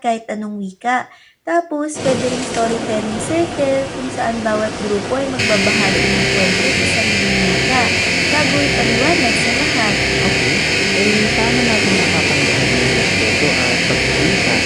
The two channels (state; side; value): identical; both; correlation 1.00